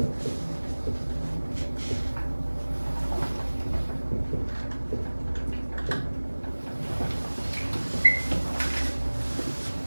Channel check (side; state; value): both; inverted; correlation -1.00